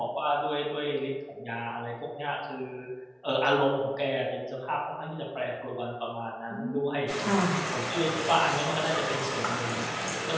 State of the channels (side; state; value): both; identical; correlation 1.00